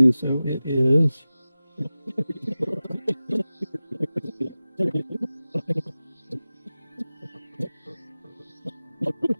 So it is.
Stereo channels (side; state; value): both; inverted; correlation -0.96